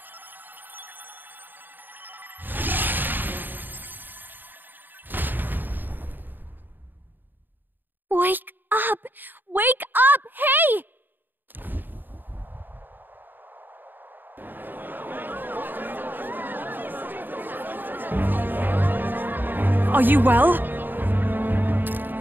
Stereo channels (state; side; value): late; left; 0.092 ms